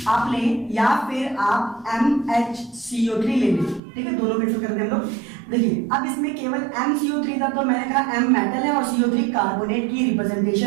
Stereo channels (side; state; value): left; drops out; at 3.8 s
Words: आप लें या फिर आप MHCO3 ले लें, ठीक है, दोनों कैंसिल करते हैं हम लोग। देखिए अब इसमें केवल MCO3 था तो मैंने कहा M मेटल है और CO3 कार्बोनेट की